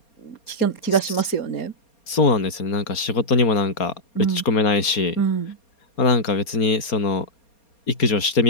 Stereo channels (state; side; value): late; right; 4.3 ms